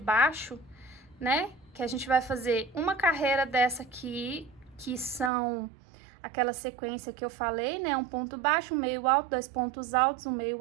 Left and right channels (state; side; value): drops out; left; at 5.3 s